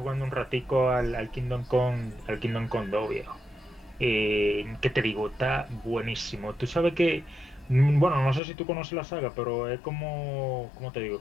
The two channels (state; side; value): drops out; right; at 8.4 s